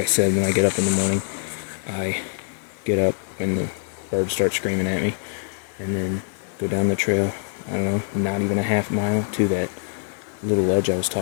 said, when I get up in the morning, I get up when the birds start screaming at me, and then go down the trail, I don't know, not even a half mile to that little ledge I was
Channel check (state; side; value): silent; right; 63 dB below the other